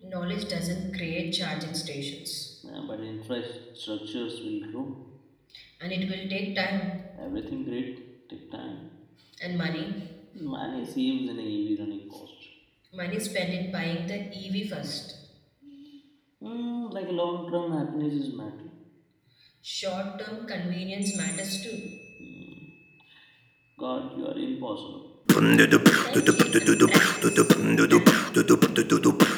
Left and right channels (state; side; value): identical; both; correlation 1.00